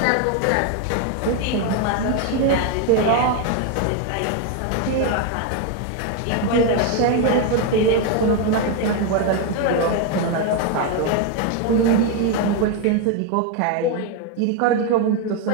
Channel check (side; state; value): both; different; correlation 0.01